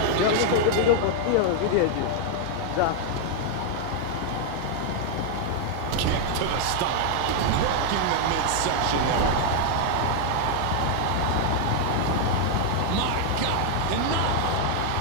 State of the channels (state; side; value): different; both; correlation 0.00